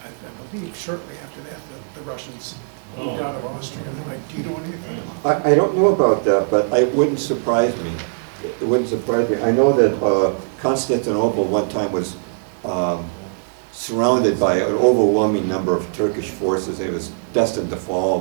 I believe shortly after that, the Russians moved out of Austria. Do you know anything about that? I don't know about that, but it wouldn't surprise me. It wouldn't surprise me. I know that Constantinople one time was surrounded by an overwhelming number of Turkish forces. It was destined to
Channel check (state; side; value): silent; left; 65 dB below the other